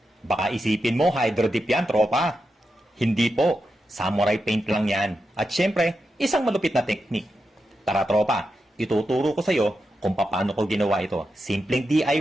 Baka isipin mo hydro dip yan, tropa. Hindi po, samurai paint lang yan. At syempre, isang malupit na technique. Tara tropa, ituturo ko sa'yo kung paano ko ginawa ito. Simpleng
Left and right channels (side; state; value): both; normal; correlation 0.88